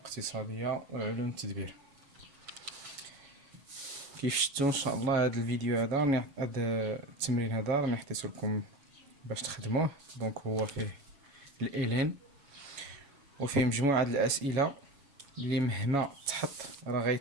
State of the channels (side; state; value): left; late; 7.2 ms